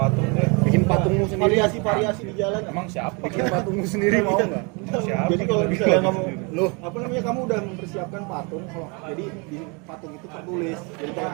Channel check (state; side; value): quieter; left; 31.6 dB